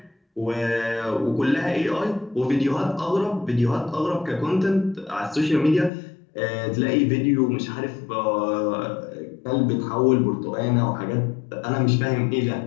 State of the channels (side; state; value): right; drops out; at 5.9 s